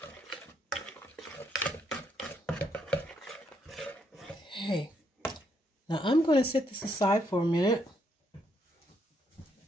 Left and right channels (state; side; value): normal; both; correlation 0.74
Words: Okay, now I'm going to set this aside for a minute.